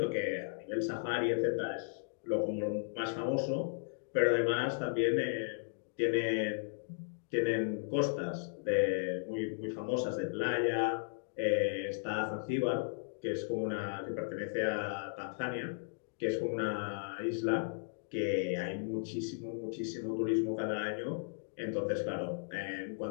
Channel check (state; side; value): silent; right; digital silence